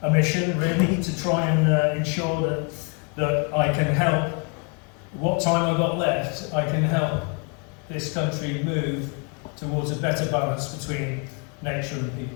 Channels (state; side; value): quieter; right; 35.5 dB